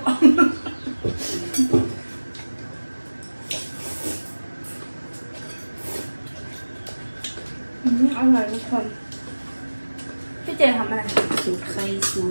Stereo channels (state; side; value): inverted; both; correlation -1.00